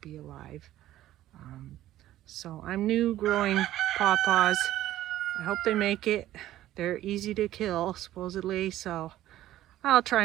alive. So I'm new growing pawpaws. I hope they make it. They're easy to kill, supposedly, so I'll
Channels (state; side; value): quieter; left; 13.9 dB